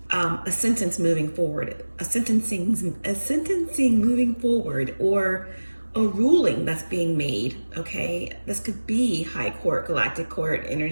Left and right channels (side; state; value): both; inverted; correlation -1.00